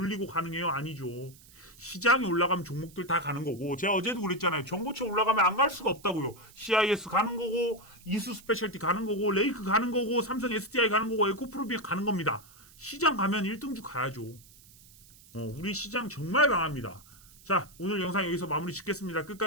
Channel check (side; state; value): right; noise; hiss, 24 dB below the sound